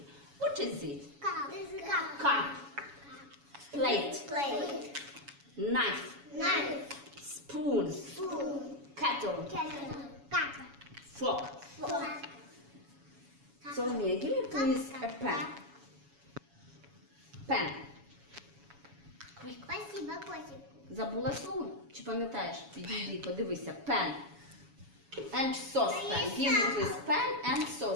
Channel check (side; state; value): left; late; 7.1 ms